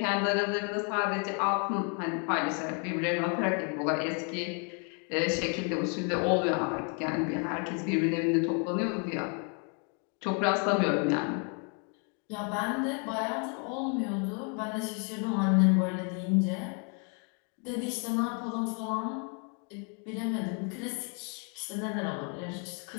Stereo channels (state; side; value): quieter; right; 38.6 dB